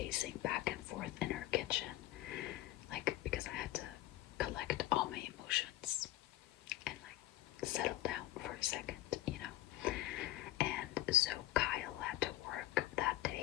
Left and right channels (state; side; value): quieter; right; 15.7 dB